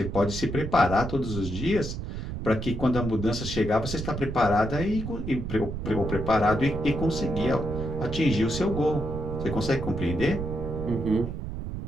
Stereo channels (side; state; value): right; noise; rumble, 6 dB below the sound